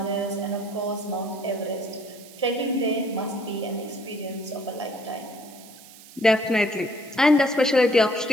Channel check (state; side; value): noise; right; hiss, 20 dB below the sound